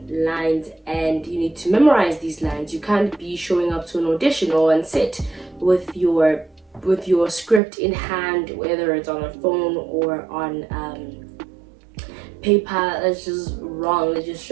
lines, and you need to memorize these lines. You can't be showing up to an audition or on set with your script in hand, whether it's on a phone or on paper. That's just wrong. It just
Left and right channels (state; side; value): drops out; left; at 7.6 s